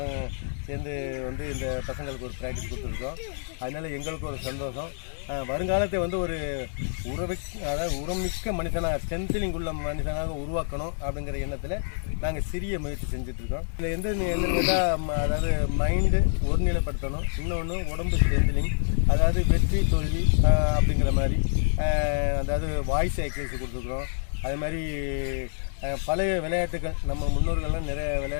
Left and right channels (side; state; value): right; silent; digital silence